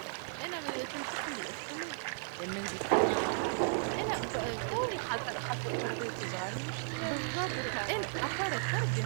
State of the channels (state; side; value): silent; left; 54 dB below the other